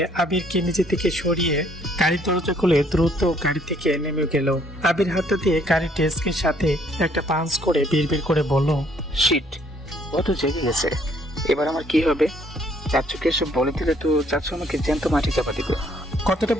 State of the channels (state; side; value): normal; both; correlation 0.64